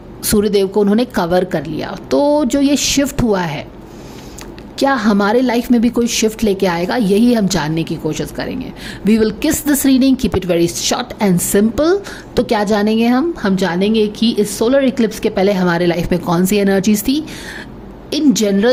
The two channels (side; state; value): both; identical; correlation 1.00